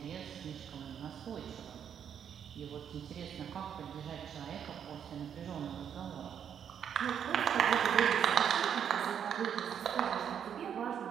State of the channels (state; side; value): quieter; left; 8.4 dB